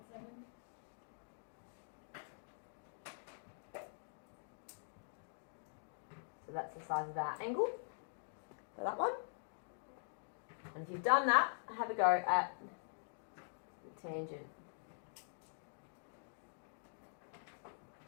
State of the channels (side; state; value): right; silent; digital silence